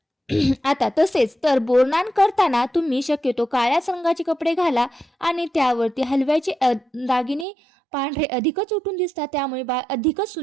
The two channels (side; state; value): left; drops out; at 7.5 s